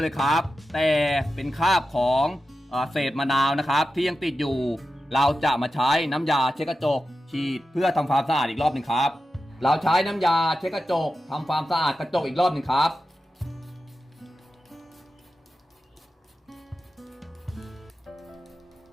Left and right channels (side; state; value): both; normal; correlation 0.91